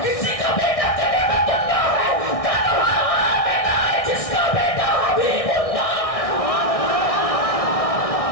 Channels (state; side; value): late; right; 1.6 ms